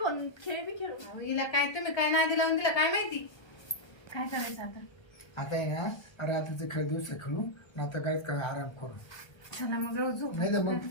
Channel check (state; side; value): late; right; 1.3 ms